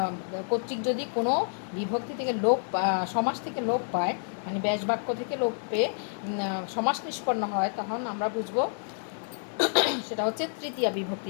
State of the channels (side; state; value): right; silent; digital silence